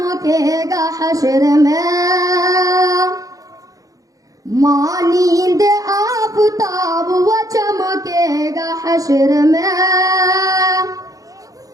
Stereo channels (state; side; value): late; left; 0.17 ms